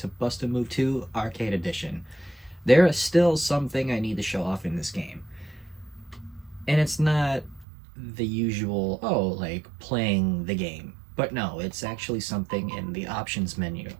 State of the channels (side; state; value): left; drops out; at 7.7 s